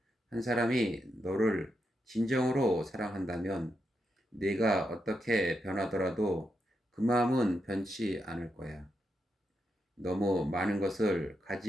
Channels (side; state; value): both; normal; correlation 0.84